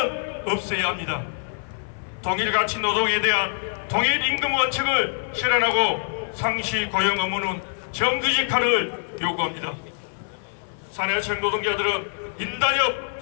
없애야 합니다. 동일가치 노동에 대한 동일임금 원칙을 실현하고 상시 고용 의무는 정규직화를 요구합니다. 사내청 노동자들은 인단협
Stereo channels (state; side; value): silent; right; 58 dB below the other